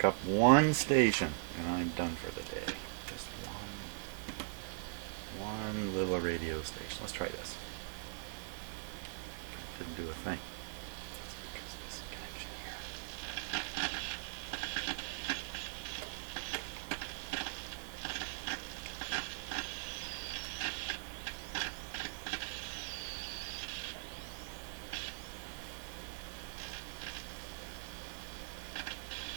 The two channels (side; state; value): left; silent; 51 dB below the other